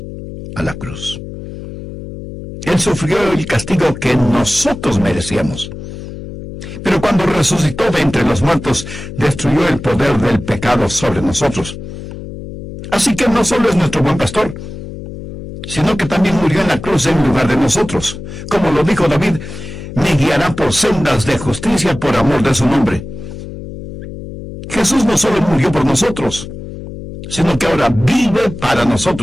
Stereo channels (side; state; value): left; noise; hum, 11 dB below the sound